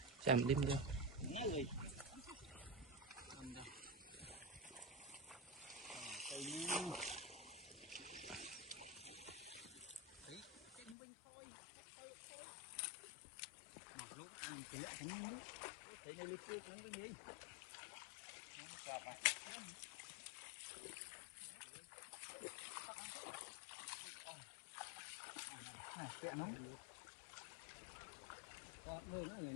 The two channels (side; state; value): right; drops out; at 11.0 s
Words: chạm đêm vô